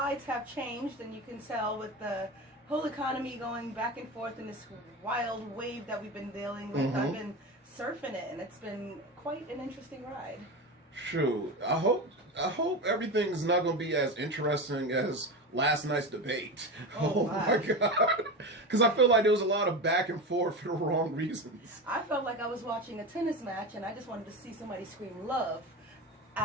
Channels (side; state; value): both; normal; correlation 0.23